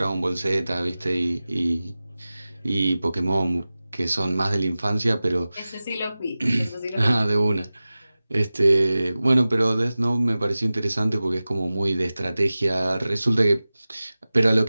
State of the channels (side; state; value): both; inverted; correlation -0.96